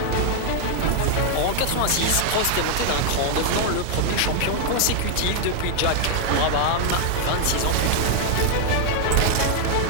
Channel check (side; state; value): both; different; correlation 0.00